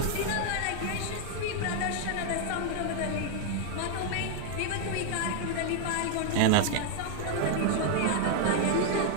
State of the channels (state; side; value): different; both; correlation 0.00